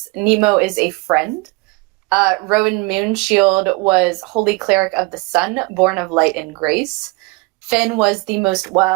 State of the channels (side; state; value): left; quieter; 26.4 dB